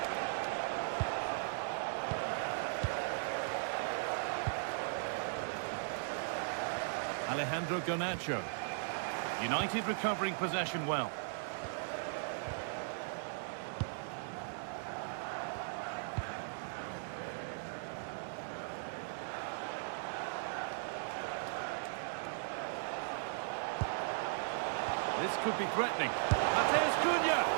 Alejandro Garnacho. United recovering possession well. This could be threatening. Mateus Cunha!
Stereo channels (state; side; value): silent; left; digital silence